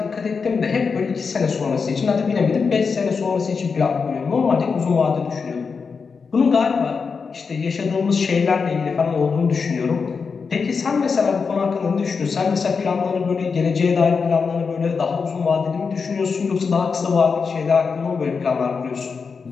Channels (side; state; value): right; quieter; 5.3 dB